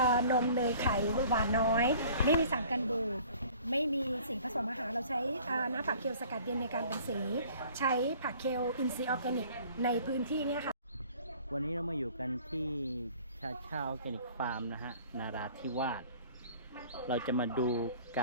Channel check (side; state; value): both; inverted; correlation -0.51